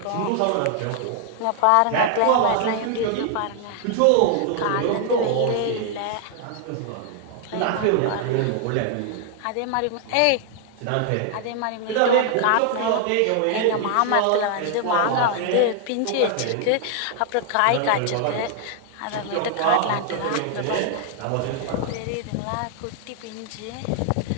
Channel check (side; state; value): both; different; correlation 0.00